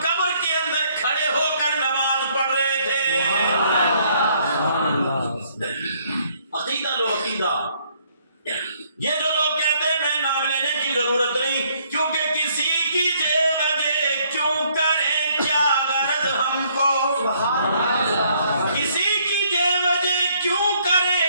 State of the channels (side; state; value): both; inverted; correlation -0.66